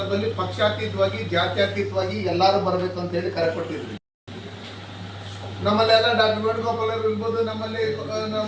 ಪಕ್ಷಾತೀತವಾಗಿ ಜಾತ್ಯತೀತವಾಗಿ ಎಲ್ಲರೂ ಬರಬೇಕು ಅಂತ ಹೇಳಿ ಕರೆ ಕೊಟ್ಟಿದ್ವಿ. ನಮ್ಮಲ್ಲೆಲ್ಲ ಡಾಕ್ಟರ್ ವೇಣುಗೋಪಾಲ್ ಅವರು ಇರ್ಬೋದು, ನಮ್ಮಲ್ಲಿ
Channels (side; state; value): both; identical; correlation 1.00